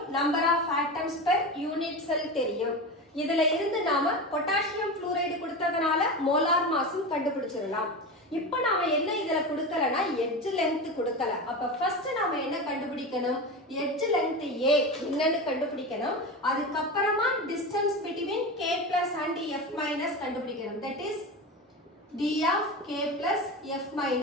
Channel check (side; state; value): both; normal; correlation 0.24